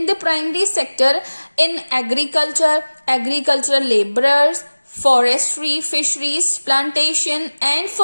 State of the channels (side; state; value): both; inverted; correlation -1.00